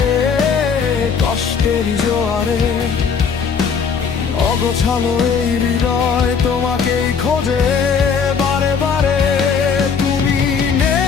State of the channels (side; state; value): right; quieter; 6.1 dB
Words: কষ্টের জোয়ারে, অগোছালো এই হৃদয় তোমাকেই খোঁজে বারে বারে। তুমি